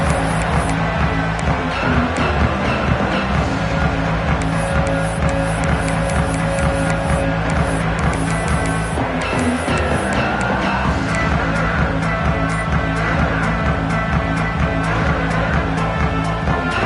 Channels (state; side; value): identical; both; correlation 1.00